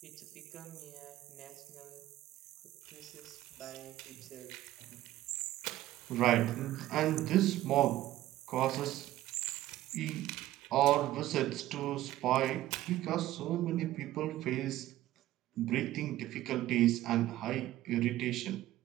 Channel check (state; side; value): quieter; left; 14.8 dB